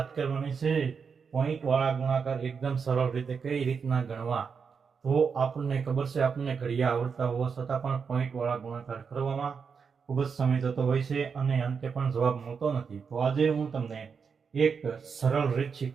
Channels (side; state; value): left; quieter; 5.9 dB